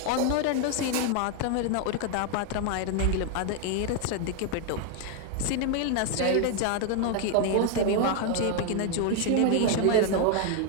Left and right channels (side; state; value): both; different; correlation 0.01